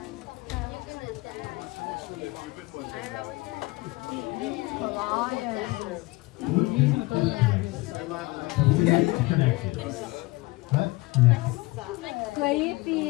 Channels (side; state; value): right; quieter; 22.5 dB